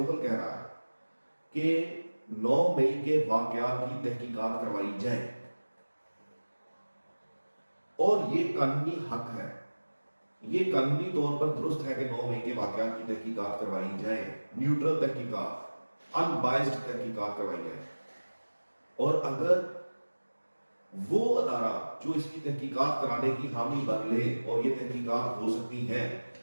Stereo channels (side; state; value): both; inverted; correlation -1.00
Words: کہہ رہا ہے کہ 9 مئی کے واقعات کی تحقیقات کروائی جائے، اور یہ قانونی حق ہے، یہ قانونی طور پر درست ہے کہ 9 مئی کے واقعات کی تحقیقات کروائی جائے، نیوٹرل تحقیقات، ان بائسڈ تحقیقات کروائی جائے۔ اور اگر وہ ادارہ جو اس کی تحقیقات کرانے کی حامی بن لے اور یہ تحقیقات ہو سکتی ہیں